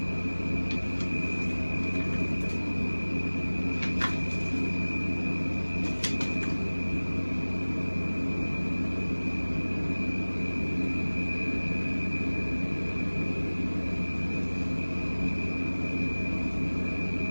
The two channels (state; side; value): inverted; both; correlation -1.00